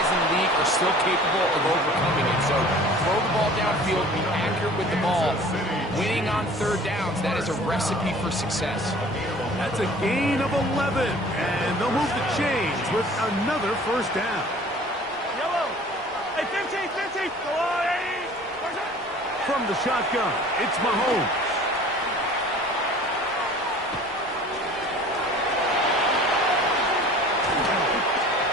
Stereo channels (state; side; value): normal; both; correlation 0.47